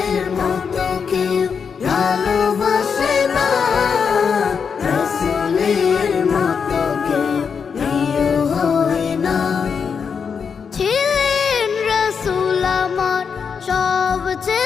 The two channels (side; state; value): right; quieter; 6.2 dB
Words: মতো কেউ ভালোবাসে না, রসুলের মতো কেউ প্রিয় হয় না। ছিলেন রসুল আমার